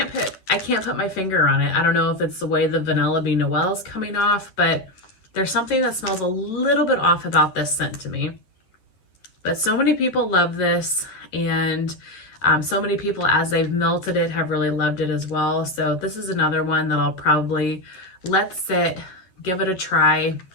put my finger on it. I don't know if it's the way the Vanilla Bean Noel is coming off, but there's something that smells a little bit off about this scent to me. But so many people love this, and so many people, as they've melted it, have really loved it as well. So this is another one that I'll probably let sit, give it a try,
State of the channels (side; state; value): right; late; 11 ms